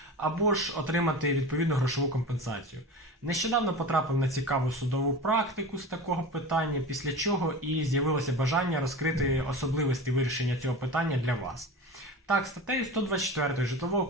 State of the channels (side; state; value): both; normal; correlation 0.31